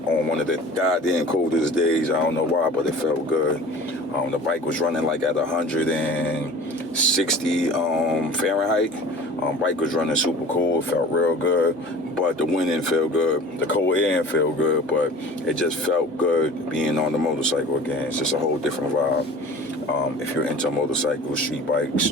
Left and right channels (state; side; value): normal; both; correlation 0.42